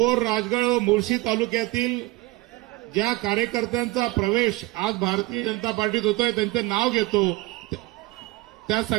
राजगड व मुळशी तालुक्यातील ज्या कार्यकर्त्यांचा प्रवेश आज भारतीय जनता पार्टीत होतोय त्यांचे नाव घेतो। त्या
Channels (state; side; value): quieter; left; 20.7 dB